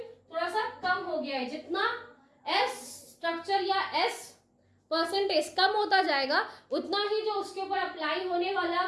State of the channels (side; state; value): both; identical; correlation 1.00